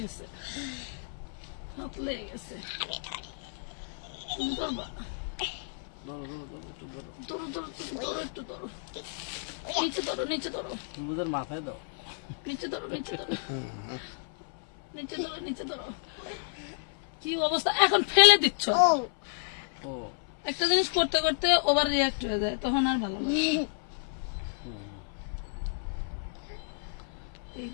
হাত লেগে গেছে। তুমি ধরবা? ধরো ধরো ধরো, একটু ধরো, নিচে ধরো, নিচে ধরো, মাথায় দাও, নিচে ধরো, নিচে ধরো, নিচে ধরো, নিচে ধরো। কি অবস্থা, এখন ফেলে দিচ্ছ। একটা জিনিস করতে করতে ওভার রিয়াক্ট হয়ে যায়, তখন আর ভালো লাগে। এই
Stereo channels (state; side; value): silent; right; 56 dB below the other